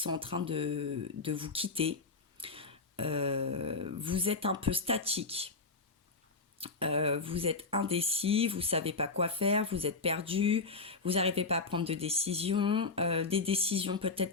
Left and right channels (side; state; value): right; quieter; 3.9 dB